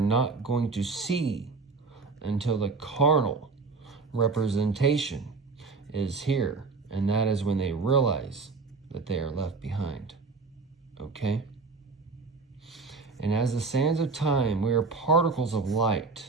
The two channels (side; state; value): left; quieter; 4.3 dB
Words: going to see until the carnal representation is here. And that is when they realize that they are left behind. Okay? And as the sands of time, we are particles of light.